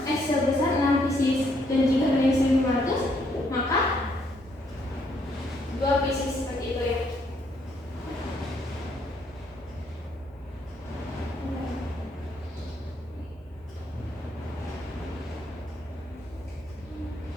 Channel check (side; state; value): both; normal; correlation 0.71